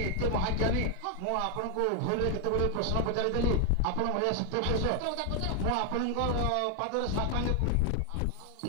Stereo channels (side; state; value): both; different; correlation 0.00